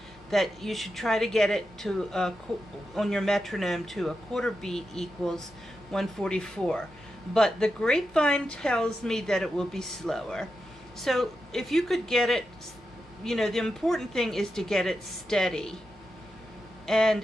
that you should try to get it to on your metronome to a quarter beat equals 144. But the grapevine tells me that it will be slower. So if you could get it, you know, the important thing is to get it steady.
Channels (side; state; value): both; normal; correlation 0.88